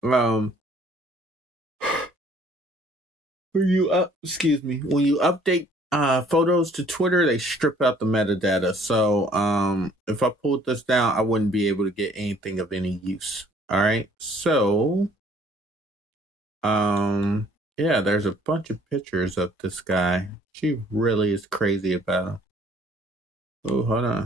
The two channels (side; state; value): both; normal; correlation 0.58